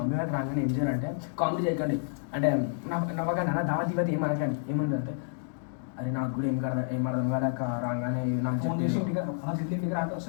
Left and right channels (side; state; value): right; silent; digital silence